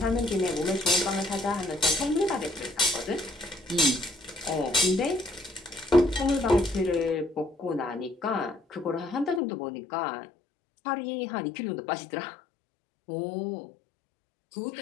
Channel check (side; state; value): right; drops out; at 9.4 s